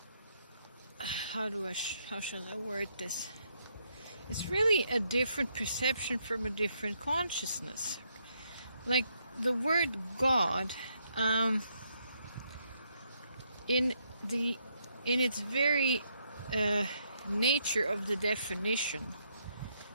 shall I word this? It's really a different perception from a different consciousness. Like the word God, in its very nature of the definition,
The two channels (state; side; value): inverted; both; correlation -0.75